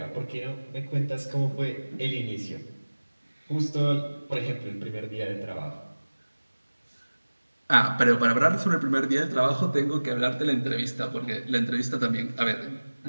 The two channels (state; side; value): inverted; both; correlation -1.00